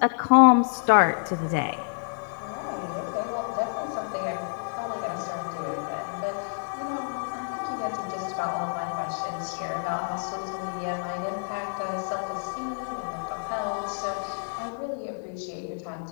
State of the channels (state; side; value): silent; right; 57 dB below the other